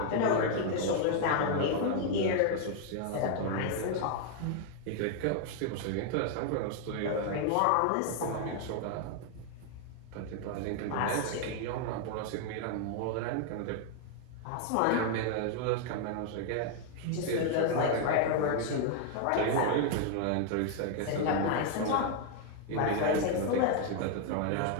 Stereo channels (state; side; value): different; both; correlation 0.00